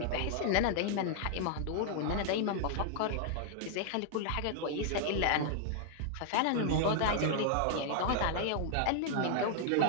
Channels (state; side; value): different; both; correlation 0.00